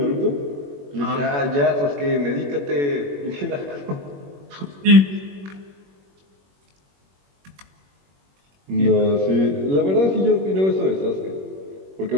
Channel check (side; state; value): left; late; 21 ms